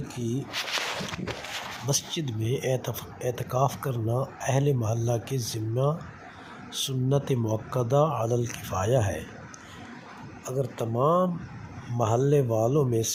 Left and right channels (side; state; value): both; identical; correlation 1.00